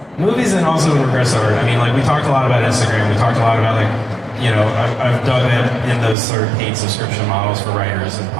Movies, and also in regards to art. I mean, like, we talked a lot about Instagram. We talked a lot about, I've dug in those sort of paid subscription models for writers and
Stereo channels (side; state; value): left; drops out; at 6.2 s